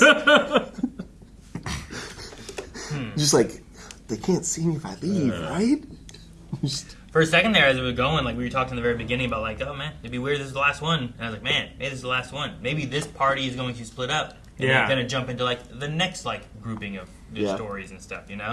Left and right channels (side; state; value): both; identical; correlation 1.00